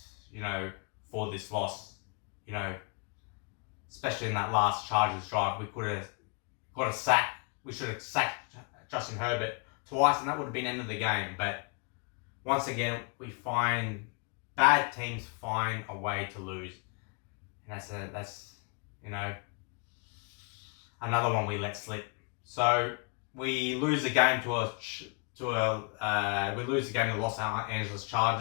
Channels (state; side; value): quieter; right; 35.8 dB